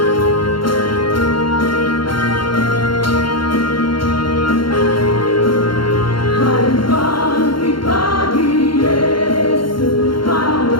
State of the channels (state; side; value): late; right; 0.73 ms